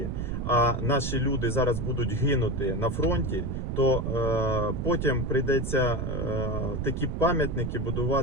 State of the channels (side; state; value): right; noise; rumble, 3 dB below the sound